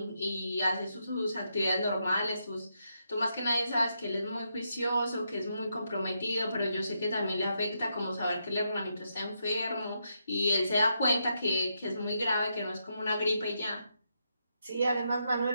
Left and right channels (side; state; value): both; inverted; correlation -0.81